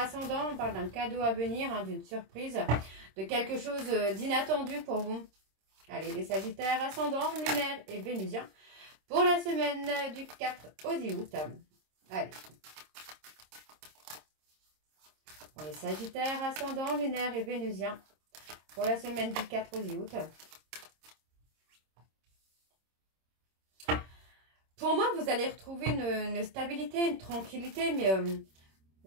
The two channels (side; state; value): left; late; 26 ms